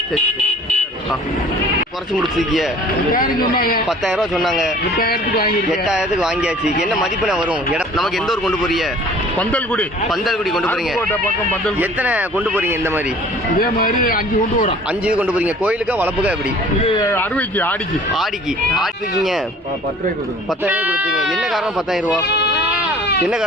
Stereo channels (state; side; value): normal; both; correlation 0.49